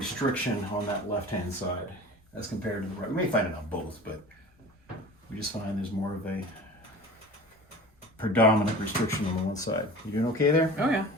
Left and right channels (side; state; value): both; normal; correlation 0.38